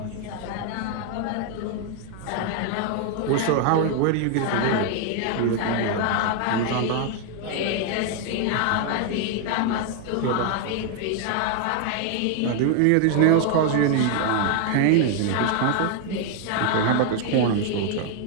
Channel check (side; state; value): both; different; correlation 0.00